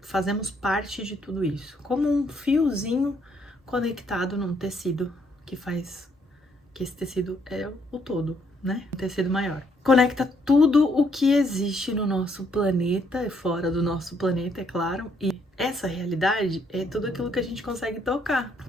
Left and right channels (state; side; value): normal; both; correlation 0.70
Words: fazemos parte de tudo isso, como um fiozinho conectado num tecido que faz que esse tecido é o todo, né? Um tecido maior. Conecta tudo o que existe no nosso planeta e fora do nosso planeta, é claro. E essa realidade é tudo aquilo que a gente consegue tocar.